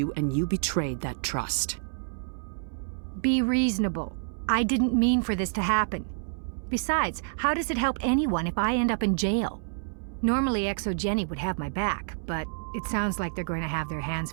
and you betrayed that trust. Be reasonable. I didn't mean for this to happen. Besides, how does it help anyone if I end up in jail? Normally ExoGeni would have my back, but it sounds like they're going to have their hands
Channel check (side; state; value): left; silent; 59 dB below the other